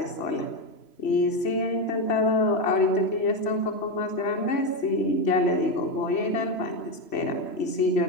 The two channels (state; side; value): late; right; 3.0 ms